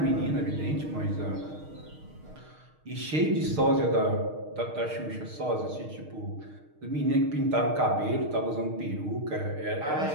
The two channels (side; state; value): left; late; 6.5 ms